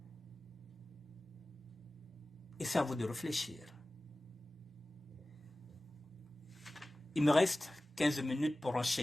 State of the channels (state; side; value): normal; both; correlation 0.97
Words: Et c'est à vous de réfléchir. Il me reste 15 minutes pour